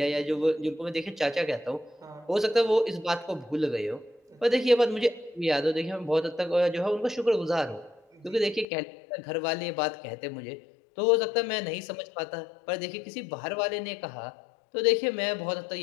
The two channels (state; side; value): drops out; right; at 8.7 s